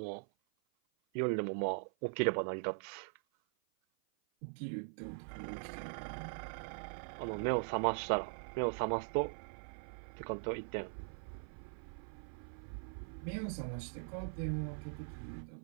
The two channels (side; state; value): left; silent; 50 dB below the other